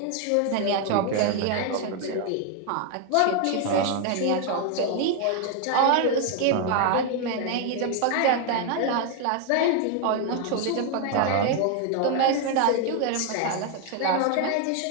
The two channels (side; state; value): both; different; correlation 0.01